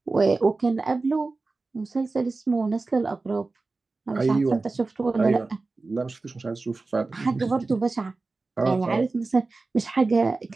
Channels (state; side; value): quieter; left; 3.6 dB